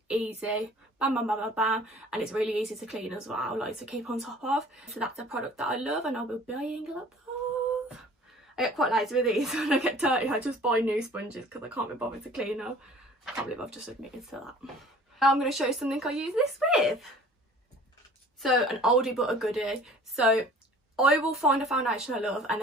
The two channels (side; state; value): both; normal; correlation 0.48